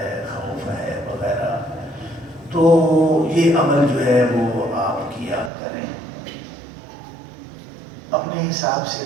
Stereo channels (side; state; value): left; drops out; at 5.5 s